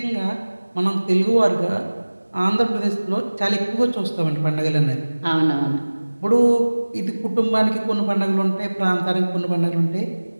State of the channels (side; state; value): both; inverted; correlation -1.00